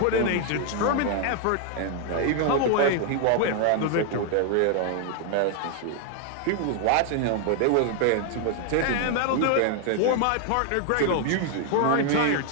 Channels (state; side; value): different; both; correlation 0.00